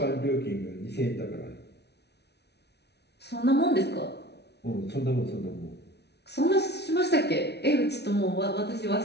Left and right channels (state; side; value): late; right; 0.49 ms